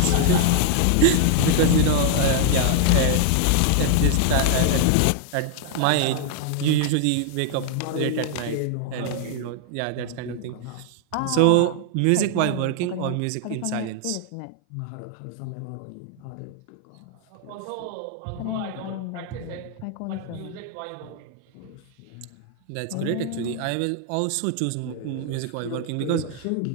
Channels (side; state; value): both; different; correlation 0.00